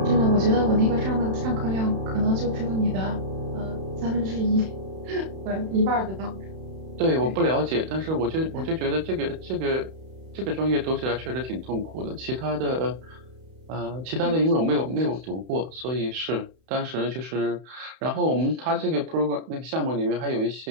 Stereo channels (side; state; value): left; late; 31 ms